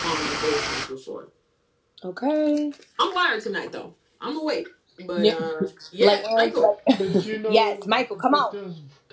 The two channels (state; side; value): identical; both; correlation 1.00